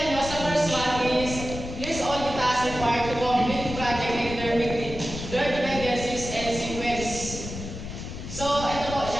nyo, sa first one is list all the tasks required to complete the project and determine their dependencies and sequence. So, ito po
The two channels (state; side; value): noise; left; rumble, 8 dB below the sound